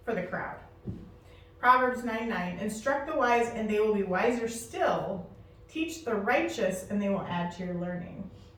for the crowd. Proverbs 9:9, instruct the wise and they will be wiser still. Teach the righteous and they will add to your learning.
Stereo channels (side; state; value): both; identical; correlation 1.00